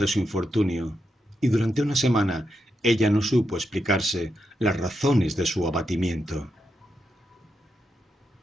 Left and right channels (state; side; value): normal; both; correlation 0.84